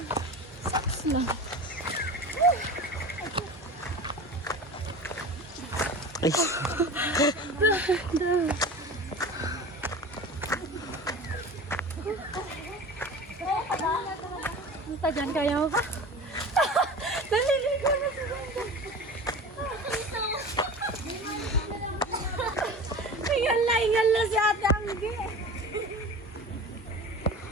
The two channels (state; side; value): normal; both; correlation 0.35